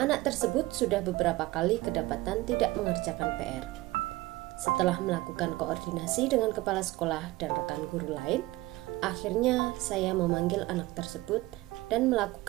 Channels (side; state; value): left; quieter; 19.5 dB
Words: Anak tersebut sudah beberapa kali kedapatan tidak mengerjakan PR. Setelah melakukan koordinasi dengan kepala sekolah dan rekan guru lain, akhirnya saya memanggil anak tersebut dan